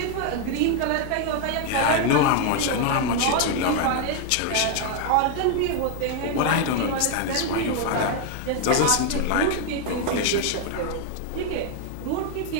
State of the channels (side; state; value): both; different; correlation 0.01